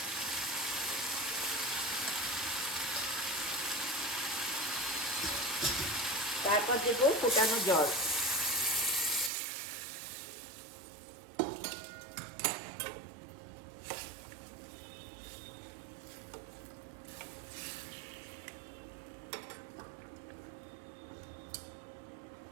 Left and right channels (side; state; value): left; drops out; at 9.3 s